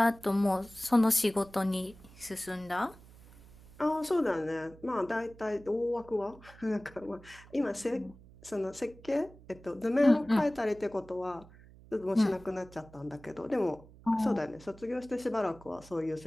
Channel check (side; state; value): right; noise; hum, 22 dB below the sound